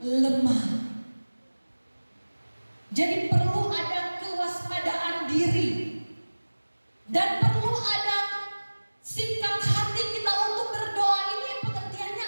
lemah. Jadi perlu ada kewaspadaan diri dan perlu ada sikap hati kita untuk berdoa. Ini pengertiannya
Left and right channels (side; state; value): both; inverted; correlation -1.00